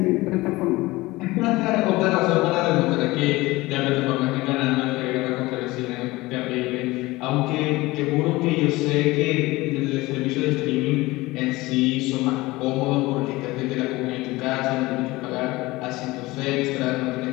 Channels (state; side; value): quieter; right; 20.4 dB